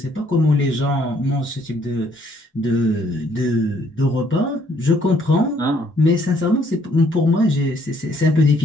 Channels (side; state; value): both; normal; correlation 0.66